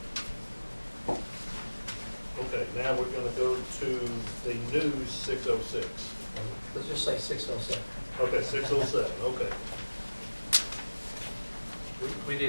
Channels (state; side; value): inverted; both; correlation -1.00